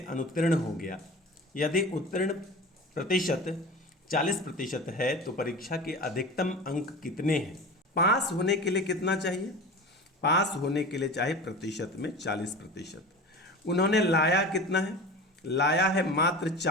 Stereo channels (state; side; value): normal; both; correlation 0.33